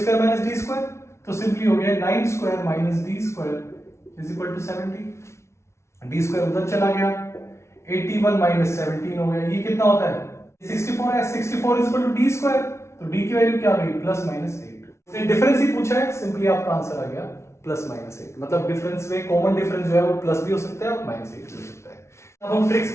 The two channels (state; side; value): late; right; 0.13 ms